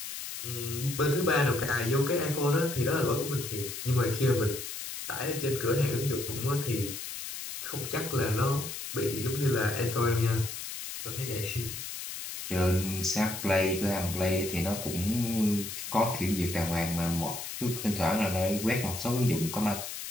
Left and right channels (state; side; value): noise; left; hiss, 7 dB below the sound